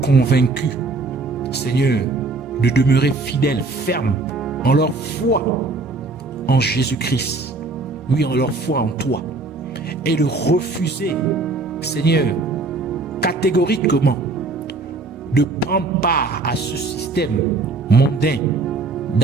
Seigneur, de demeurer fidèles, fermes en leur foi en Jésus-Christ, oui, en leur foi en toi, et de refuser, Seigneur, catégoriquement, de prendre part à ce système mondain,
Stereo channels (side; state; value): left; quieter; 3.6 dB